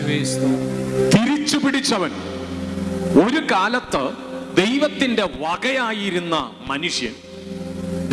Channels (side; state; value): both; identical; correlation 1.00